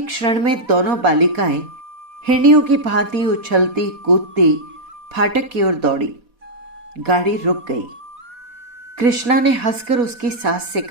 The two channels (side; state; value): left; late; 4.1 ms